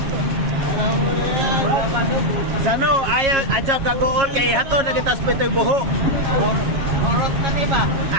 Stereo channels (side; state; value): left; late; 7.3 ms